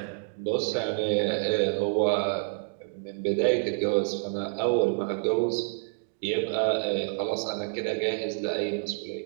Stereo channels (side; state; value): left; silent; digital silence